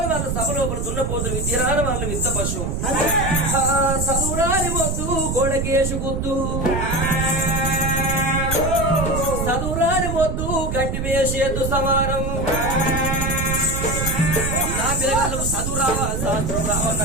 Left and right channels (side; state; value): right; noise; rumble, 1 dB below the sound